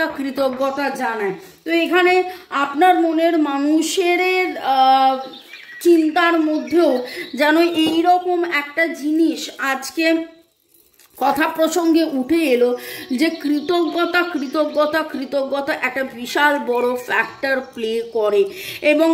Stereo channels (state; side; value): identical; both; correlation 1.00